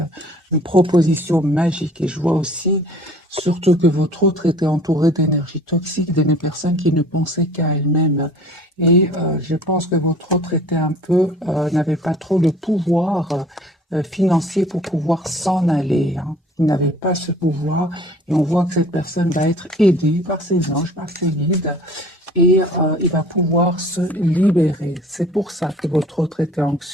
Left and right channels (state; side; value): normal; both; correlation 0.50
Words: une proposition magique. Et je vois aussi, surtout que votre autre était entouré d'énergie toxique, de personnes qui ne pensaient qu'à elles-mêmes. Et je pense que votre autre était un peu, n'avait pas trop le pouvoir financier pour pouvoir s'en aller. Hein. Il n'avait pas ce pouvoir et on voit que cette personne va être aidée par ses anges, par ses guides et il va pouvoir se libérer. C'est pour ça que votre autre était